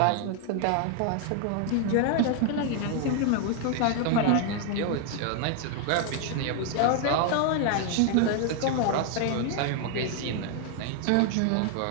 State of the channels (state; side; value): different; both; correlation 0.00